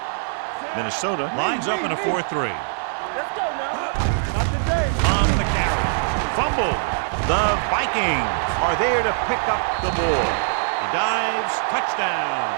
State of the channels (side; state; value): left; silent; digital silence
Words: Minnesota lines up in a 4-3. Let's go now. Not today. On the carry. Fumble. The Vikings are there to pick up the ball. He dives. Touchdown.